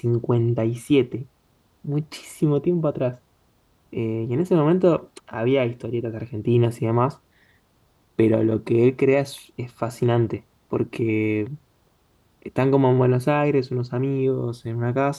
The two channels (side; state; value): both; identical; correlation 1.00